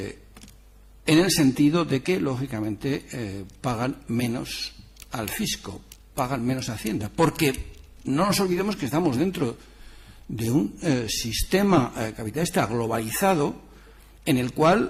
el sentido de que, lógicamente, pagan menos al fisco, pagan menos a Hacienda, porque no nos olvidemos que estamos dentro de un sistema capitalista globalizado en el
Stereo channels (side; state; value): both; identical; correlation 1.00